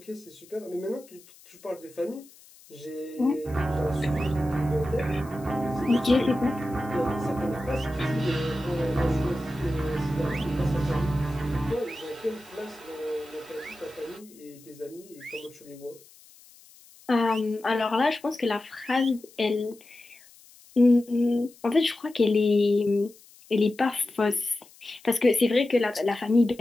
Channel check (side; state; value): left; noise; hiss, 25 dB below the sound